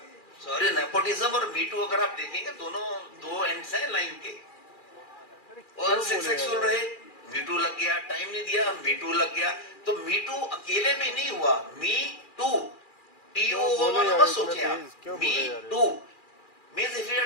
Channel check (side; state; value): right; late; 2.4 ms